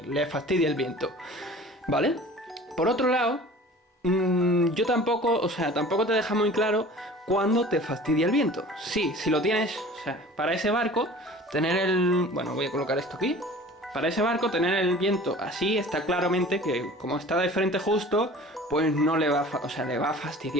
le fastidie el viento, ¿vale? Por otro lado, yo tampoco te deja muy claro cuándo te fastidia el viento. Sí, si lo tienes, o sea, para ese barco, tener el... Bueno, voy a colocar esto aquí. Para ese barco, tener el viento así, está claramente que como está de frente justo, pues no le va a, le va a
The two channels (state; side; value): normal; both; correlation 0.43